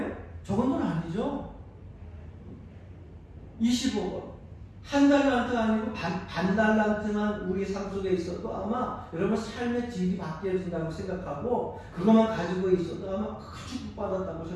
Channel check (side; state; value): both; identical; correlation 1.00